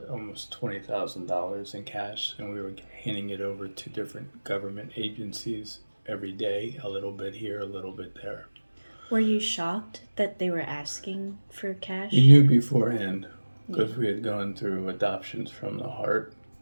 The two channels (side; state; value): both; inverted; correlation -1.00